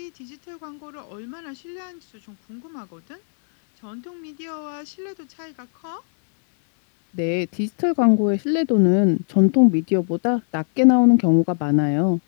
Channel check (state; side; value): silent; right; 62 dB below the other